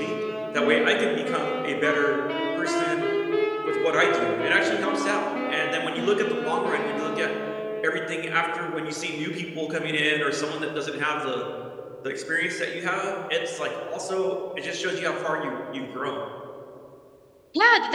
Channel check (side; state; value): both; identical; correlation 1.00